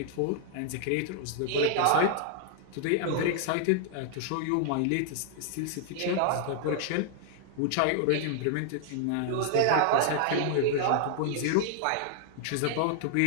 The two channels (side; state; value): both; different; correlation -0.01